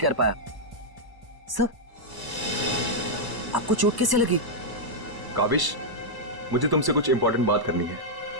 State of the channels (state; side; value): late; left; 1.0 ms